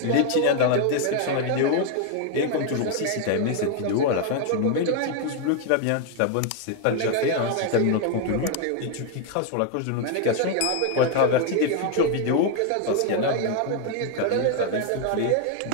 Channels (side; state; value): both; different; correlation 0.00